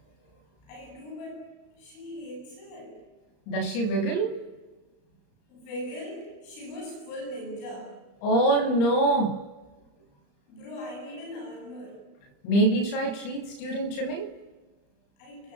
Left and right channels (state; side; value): late; right; 35 ms